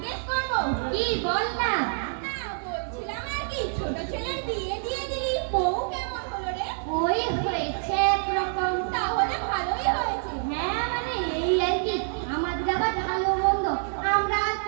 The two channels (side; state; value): left; silent; 60 dB below the other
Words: করবো? কি বল না। না বলছিলাম আর কি, ছোট ছেলের বিয়ে দিয়ে দিলি, বউ কেমন হলো রে? ওই হয়েছে একরকম। তাহলে ভালোই হয়েছে। হ্যাঁ মানে এই আর কি, আমাদের আবার ভালো মন্দ আমরা আর